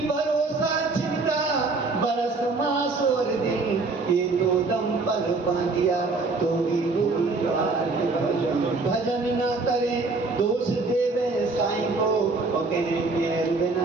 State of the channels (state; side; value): quieter; left; 3.8 dB